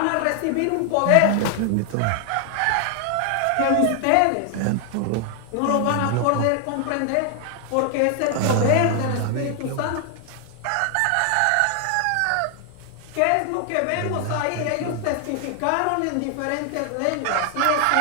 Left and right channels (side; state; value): both; different; correlation 0.00